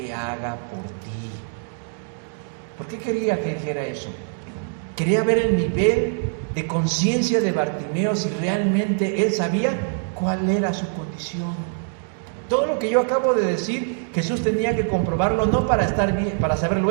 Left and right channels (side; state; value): left; silent; 63 dB below the other